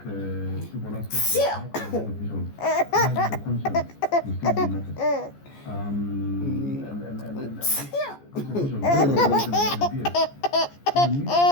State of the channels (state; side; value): late; right; 14 ms